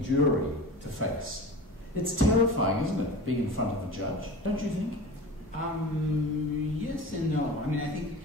to face. It's terrifying, isn't it, being in front of a judge, don't you think? Yes and no. I mean,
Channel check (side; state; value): both; normal; correlation 0.34